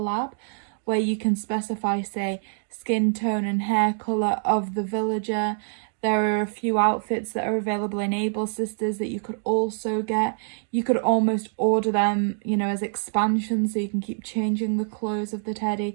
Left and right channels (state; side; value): silent; left; digital silence